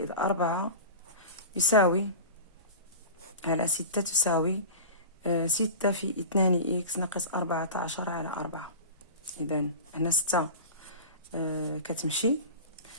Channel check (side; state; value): both; inverted; correlation -0.32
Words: 4 يساوي على 6 تساوي 6 في 2 إكس ناقص 14 على 4. إذا هنا 6 كتمشي.